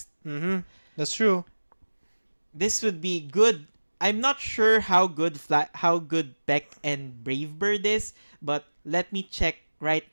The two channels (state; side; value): inverted; both; correlation -1.00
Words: Mm-hmm. That's true. This would be good. I'm not sure how good Beck and Brave Bird is, but let me check right